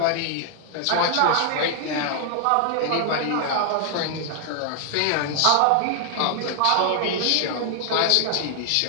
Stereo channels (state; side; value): different; both; correlation 0.00